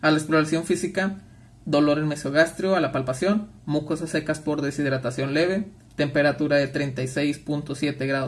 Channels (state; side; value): identical; both; correlation 1.00